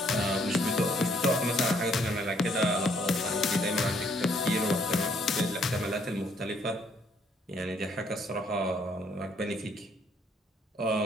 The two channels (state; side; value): normal; both; correlation 0.67